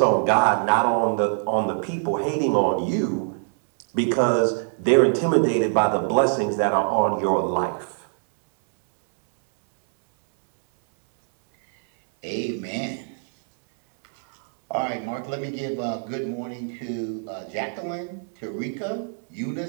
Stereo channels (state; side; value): silent; left; 63 dB below the other